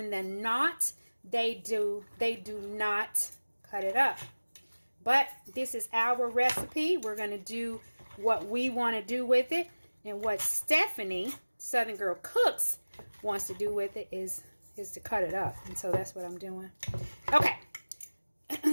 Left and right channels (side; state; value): both; inverted; correlation -1.00